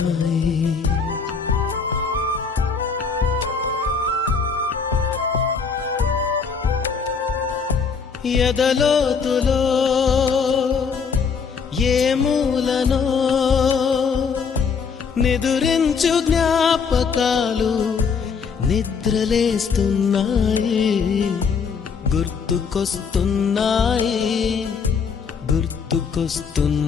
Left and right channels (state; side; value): quieter; right; 5.7 dB